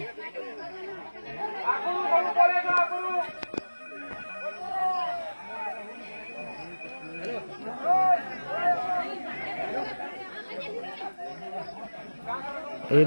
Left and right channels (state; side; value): inverted; both; correlation -1.00